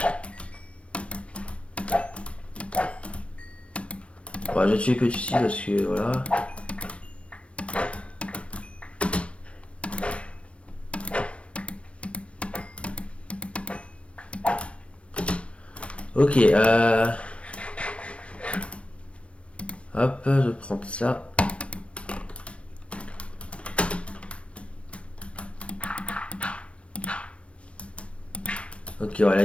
Bon, je vais tuer que ici parce que, voilà. Ok, hop, je vais prendre ça. Ok, ouais, la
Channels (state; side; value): late; right; 0.061 ms